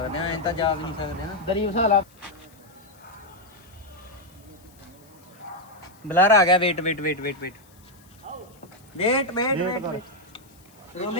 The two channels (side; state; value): left; noise; hiss, 28 dB below the sound